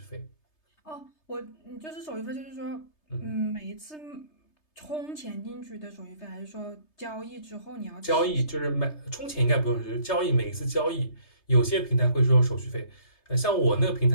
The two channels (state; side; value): late; right; 3.3 ms